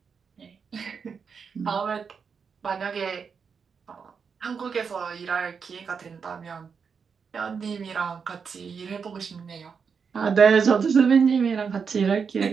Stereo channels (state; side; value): quieter; left; 6.0 dB